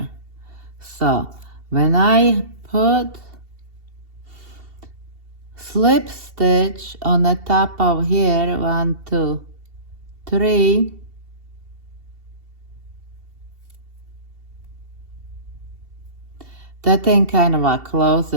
So when I put slip stitch on the top of here, 1, 2, 3, that thing kind of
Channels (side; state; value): left; late; 2.7 ms